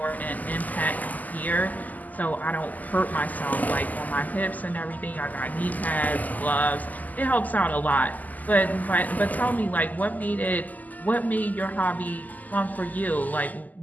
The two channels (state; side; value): late; right; 0.081 ms